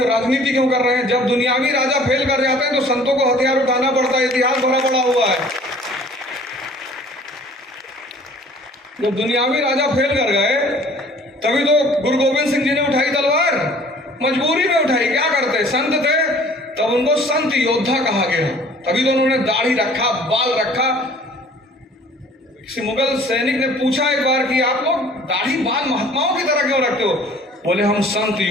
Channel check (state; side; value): normal; both; correlation 0.52